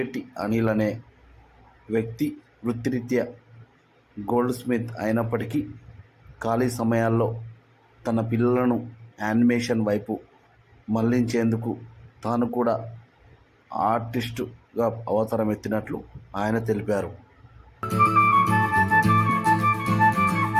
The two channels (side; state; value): both; identical; correlation 1.00